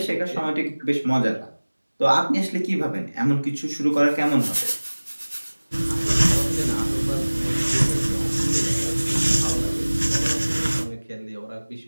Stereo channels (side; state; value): both; inverted; correlation -1.00